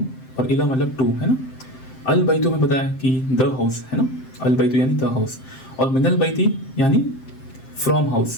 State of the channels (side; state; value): right; late; 7.7 ms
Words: और इला मतलब टू, है ना। अल बैतु में बताया कि द हाउस, है ना, अल बैतु यानी द हाउस, और मिनल बैती यानी फ्रॉम